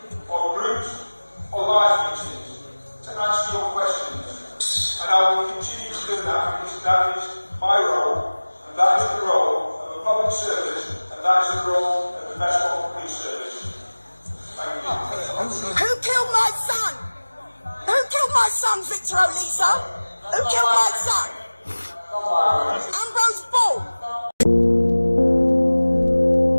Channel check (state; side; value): inverted; both; correlation -1.00